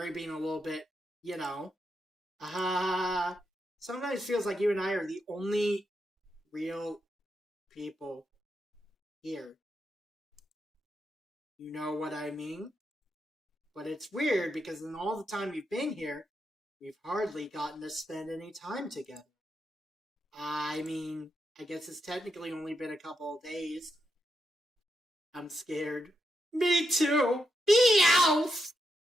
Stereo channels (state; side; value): normal; both; correlation 0.83